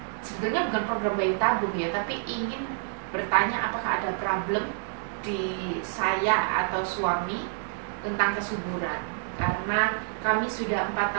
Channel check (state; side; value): silent; left; digital silence